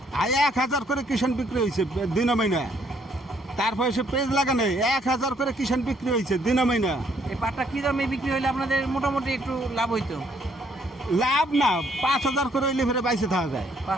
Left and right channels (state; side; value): normal; both; correlation 0.68